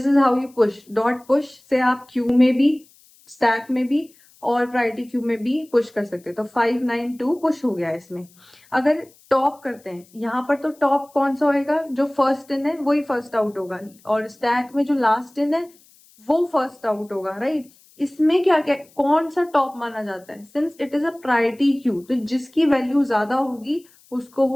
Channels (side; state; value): left; noise; hiss, 29 dB below the sound